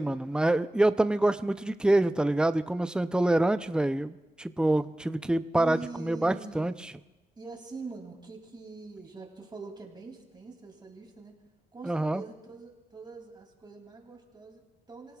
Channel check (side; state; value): both; normal; correlation 0.97